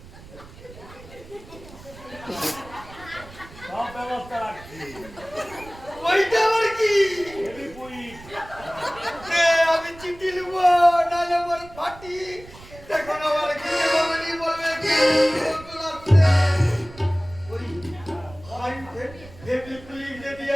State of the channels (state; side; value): noise; right; rumble, 19 dB below the sound